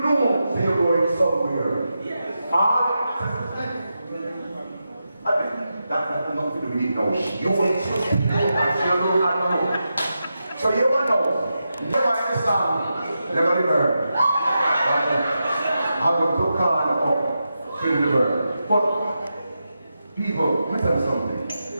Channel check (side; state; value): both; inverted; correlation -0.88